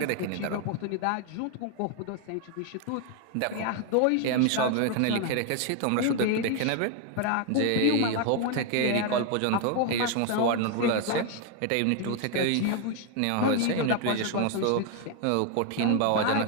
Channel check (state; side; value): different; both; correlation 0.01